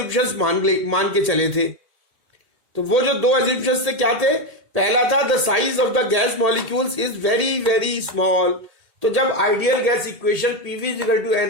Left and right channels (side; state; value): left; late; 1.8 ms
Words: मान के चले थे. तो वो जो 2 assumptions थे क्या थे? पहला था the size of the gas molecules is very very small. तो जब ideal gas equation PV is equal to